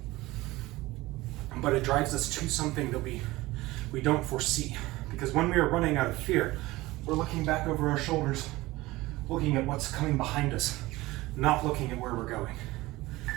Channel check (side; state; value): left; quieter; 19.3 dB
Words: but it drives us to something that we don't foresee. Because when we are running out of fear, we're looking back over our shoulders, looking at what's coming behind us, not looking at where we're going.